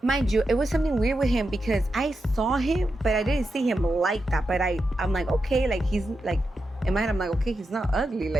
mind you, it was something weird with him because I saw him, but I didn't see him like that. But I'm like, okay, like he's like, in my head, I'm like, okay, he's not ugly,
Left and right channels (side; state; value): both; normal; correlation 0.88